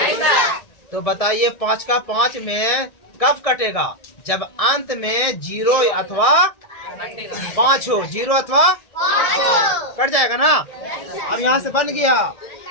तो बताइए 5 का 5 में कब कटेगा? जब अंत में 0 अथवा 5 हो। 0 अथवा 5 कट जाएगा ना। अब यहाँ से बन गया,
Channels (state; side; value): late; right; 1.7 ms